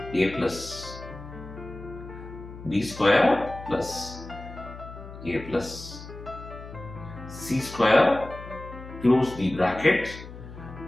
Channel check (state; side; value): noise; left; hum, 14 dB below the sound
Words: a plus b square plus a plus c square, close the bracket,